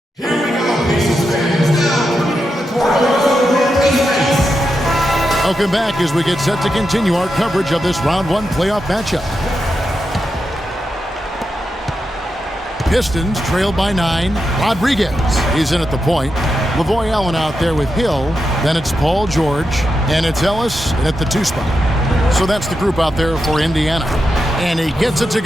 Welcome back as we get set to continue our coverage of this round 1 playoff matchup. Pistons trailed by 9. Rodriguez, he's in at the point. Lavoy Allen out there with Hill. Then it's Paul George. And it's Ellis at the 2 spot. So that's the group out there for Indiana. And he gets it to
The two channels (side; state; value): both; normal; correlation 0.87